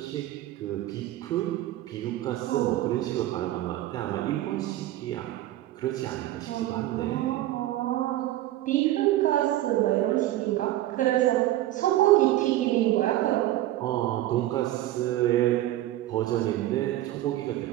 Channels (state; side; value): quieter; left; 14.9 dB